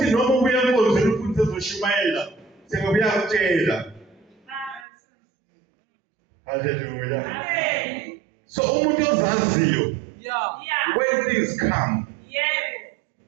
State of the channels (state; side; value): drops out; left; at 4.9 s